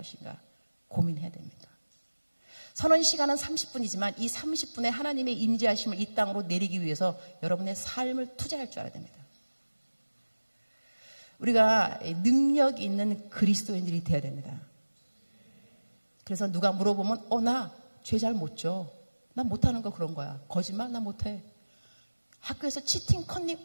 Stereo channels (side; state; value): both; inverted; correlation -1.00